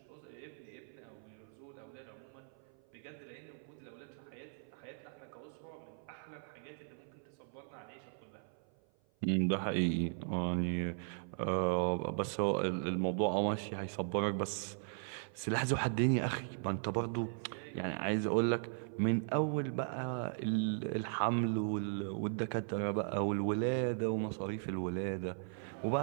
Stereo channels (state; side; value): silent; left; 52 dB below the other